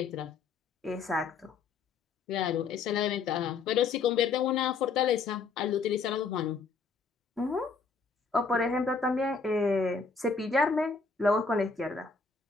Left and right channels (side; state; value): right; quieter; 4.8 dB